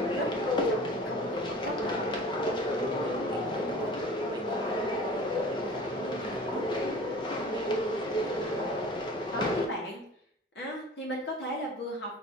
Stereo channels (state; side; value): normal; both; correlation 0.42